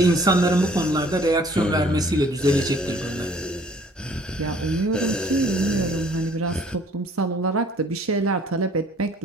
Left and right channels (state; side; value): normal; both; correlation 0.56